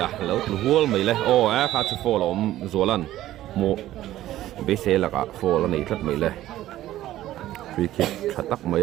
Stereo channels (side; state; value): left; quieter; 14.1 dB